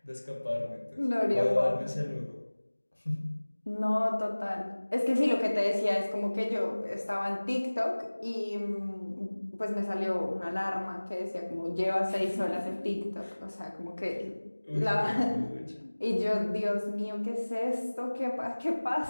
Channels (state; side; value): inverted; both; correlation -1.00